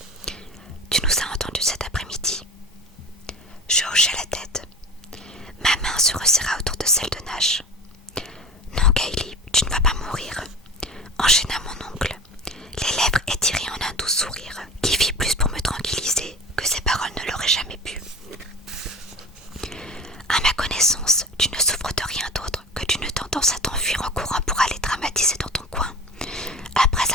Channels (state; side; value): normal; both; correlation 0.34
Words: Tu nous as entendus cet après-midi ?» Je hochai la tête. Ma main se resserra autour de celle de Nash. « Non, Kaylee, tu ne vas pas mourir », enchaîna mon oncle, les lèvres étirées en un doux sourire qui fit plus pour me tranquilliser que ses paroles ne l'auraient jamais pu. « À ma connaissance, tu ne souffres de rien d'autre que d'une tendance à t'enfuir en courant pour aller dramatiser dans ton coin, après